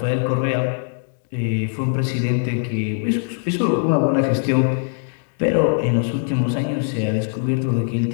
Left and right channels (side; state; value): right; silent; digital silence